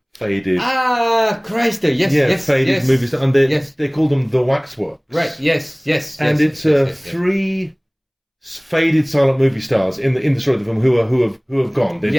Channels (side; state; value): both; identical; correlation 1.00